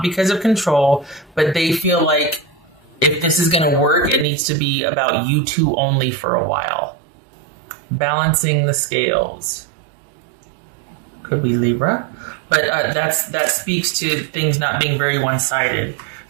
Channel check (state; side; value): drops out; left; at 4.2 s